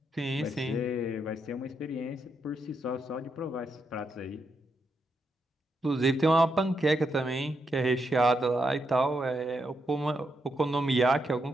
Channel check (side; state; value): both; normal; correlation 0.82